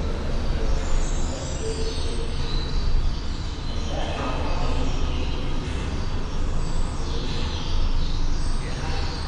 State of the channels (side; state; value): both; identical; correlation 1.00